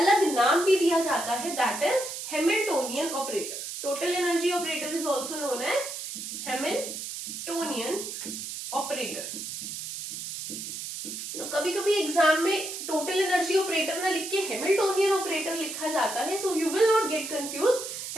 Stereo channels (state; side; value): noise; right; hiss, 7 dB below the sound